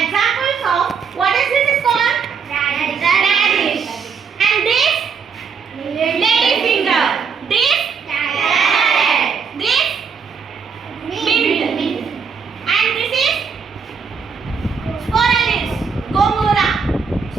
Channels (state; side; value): quieter; left; 6.0 dB